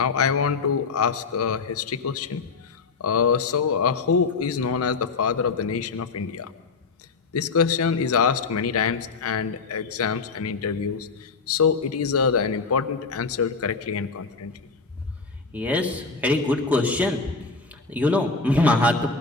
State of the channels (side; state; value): right; quieter; 4.5 dB